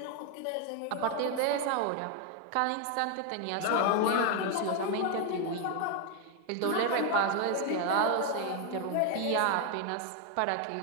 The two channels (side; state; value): both; different; correlation 0.01